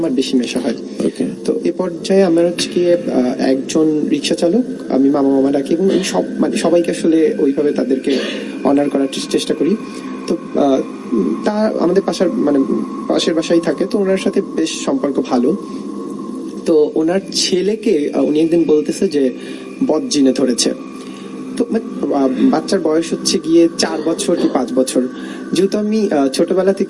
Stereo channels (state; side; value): identical; both; correlation 1.00